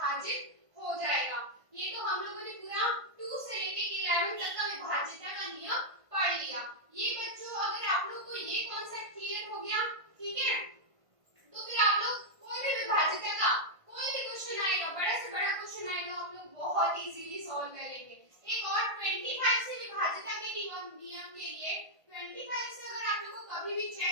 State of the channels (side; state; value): left; late; 1.5 ms